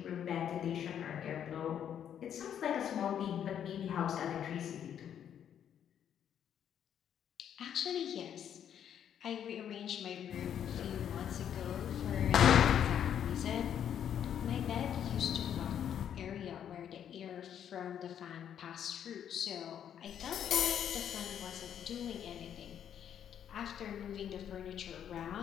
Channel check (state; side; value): quieter; right; 9.3 dB